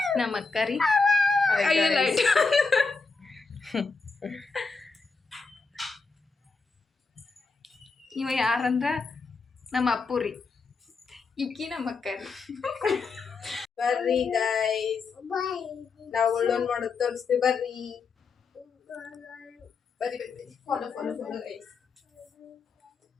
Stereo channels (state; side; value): quieter; right; 4.4 dB